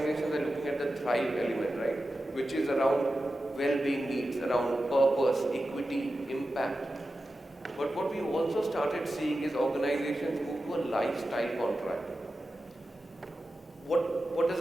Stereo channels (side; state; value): both; normal; correlation 0.92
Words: are looking at the thrive element, right? Which is around well-being needs, around purpose, equity, impact. But what we also started seeing is organizations move to a lifestyle contract. What does